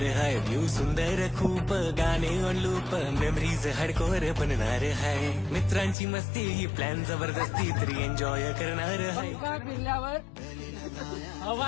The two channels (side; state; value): right; drops out; at 6.0 s